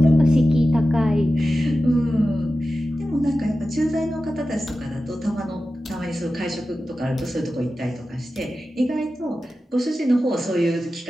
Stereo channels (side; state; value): both; normal; correlation 0.93